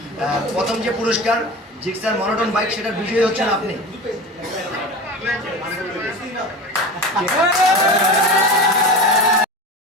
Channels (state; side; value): normal; both; correlation 0.30